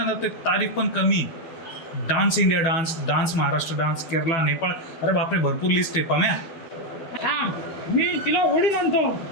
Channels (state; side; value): late; right; 12 ms